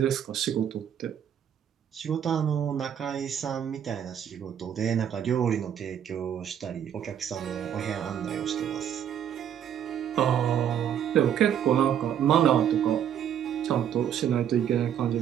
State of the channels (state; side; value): quieter; left; 9.3 dB